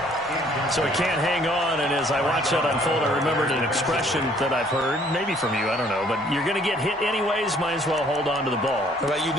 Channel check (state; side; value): normal; both; correlation 0.60